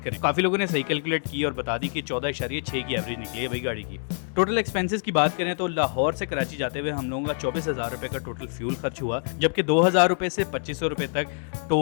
करें। काफी लोगों ने सही कैलकुलेट की और बता दी कि 14.6 की एवरेज निकली है भाई गाड़ी की। टोटल एक्सपेंसेस की बात करें तो लाहौर से कराची जाते हुए हम लोगों का 24,000 रुपए का टोटल फ्यूल खर्च हुआ, जबकि 2,000 रुपए से 2,500 रुपए तक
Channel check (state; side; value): silent; right; digital silence